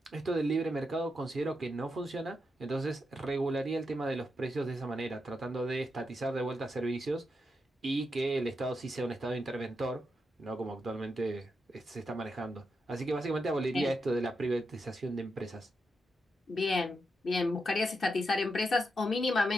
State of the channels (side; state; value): both; normal; correlation 0.85